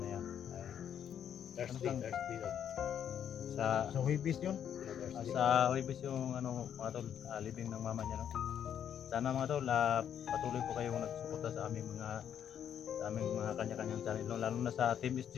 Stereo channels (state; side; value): quieter; right; 9.1 dB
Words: Thursday. Sa Sa Huibis yun. sa Huibis yung mga tol, living ng mama niya, no? Sana mga tol, patuloy po kayong nagsuporta sa aming mga kanya-kanyang channel, no? Lalo na sa Team